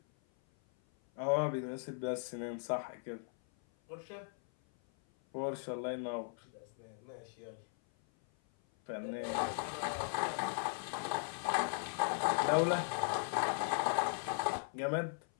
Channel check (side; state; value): right; silent; 52 dB below the other